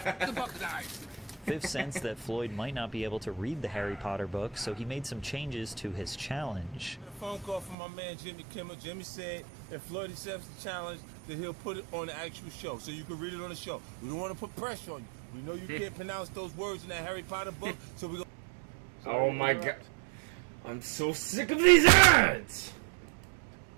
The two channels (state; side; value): drops out; left; at 7.8 s